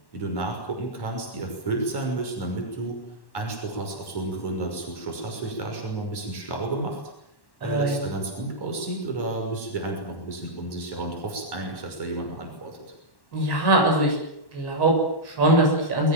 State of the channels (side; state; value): right; late; 1.1 ms